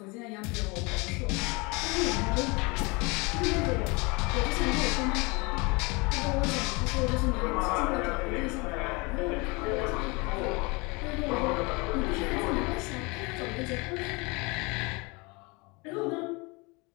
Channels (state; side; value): quieter; right; 27.5 dB